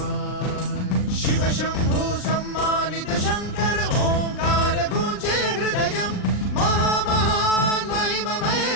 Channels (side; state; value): right; late; 39 ms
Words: शिव शंभु सम्मानित शंकर ओंकार गूंजे हृदयम् महामहान महिम